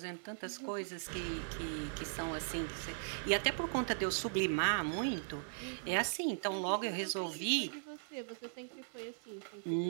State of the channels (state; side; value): silent; left; digital silence